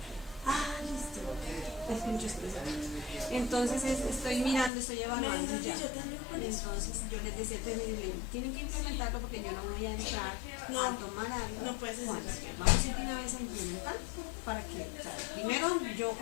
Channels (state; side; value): drops out; right; at 4.7 s